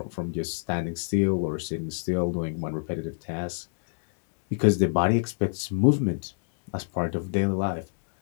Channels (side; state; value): right; silent; digital silence